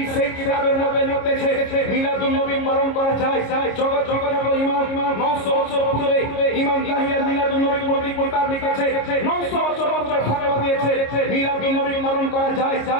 সেই কিতাবের মধ্যে লিখতেছে মিলাদুন নবী পালন করা যায় জগৎ ইমাম 900 বছর পূর্বে ইমাম ইয়াহিয়া মিলাদুন নবী প্রতি কিতাব লিখেছে 900 বছর ফতোয়া দিয়েছে মিলাদুন নবী পালন করা যায়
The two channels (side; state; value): right; late; 26 ms